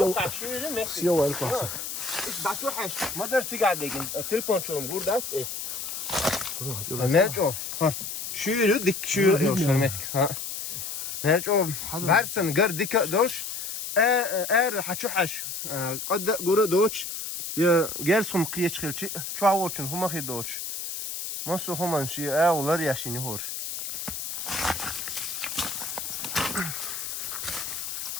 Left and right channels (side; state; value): left; noise; hiss, 6 dB below the sound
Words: Sio el kwasa. إيش بعتوحش ما درت قاعد لكن التليفون شو نقول ده إيه مالجو شو يردك شو يوصلمتك ها مالجو برسن قر ديك دولش حتشوحش قد قرا دوتش يا جالسهم قيتش خلشي شو عوضشن هما خير دوتش ما سو هما شي ولا ياشيني هور